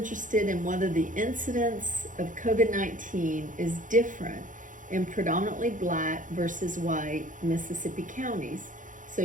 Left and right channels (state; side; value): late; left; 0.38 ms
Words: in whether the incidence of COVID-19 is different in predominantly black versus white Mississippi counties.